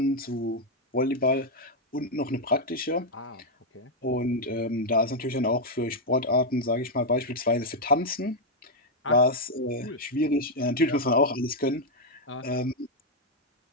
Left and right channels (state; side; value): normal; both; correlation -0.01